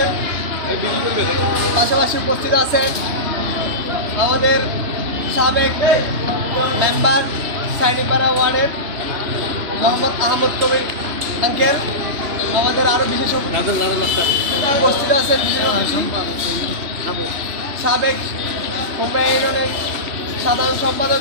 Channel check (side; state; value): left; late; 3.0 ms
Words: পাশাপাশি উপস্থিত আছেন আমাদের সাবেক মেম্বার সাইনিপাড়া ওয়ার্ডের মোহাম্মদ আহমদ কবির আঙ্কেল। আমাদের আরও বিশেষ উপস্থিত আছেন সাবেক কুমড়া ইউনিয়নের সাধারণ